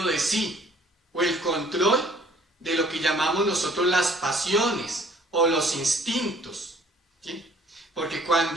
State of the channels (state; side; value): normal; both; correlation 0.56